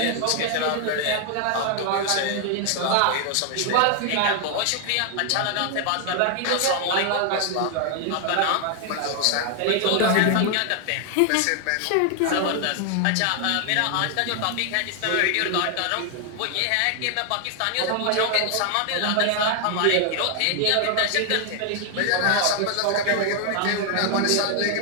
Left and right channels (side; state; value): both; different; correlation 0.00